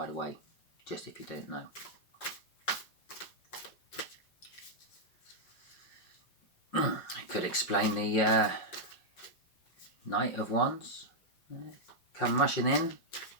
the way, just if you don't know. I could explain the Knight of Wands. Come rushing in.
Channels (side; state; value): right; late; 5.0 ms